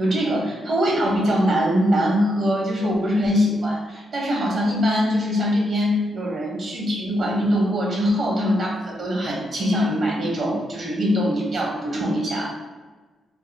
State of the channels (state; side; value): normal; both; correlation 0.80